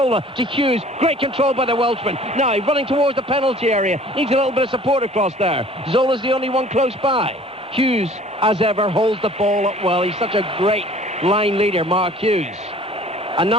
to Hughes. Great control by the Welshman. Now running towards the penalty area. Needs a little bit of support across there. Zola's the only one close by. Hughes, as ever, holds the ball up well. He's such a great line leader, Mark Hughes. And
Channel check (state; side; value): normal; both; correlation 0.50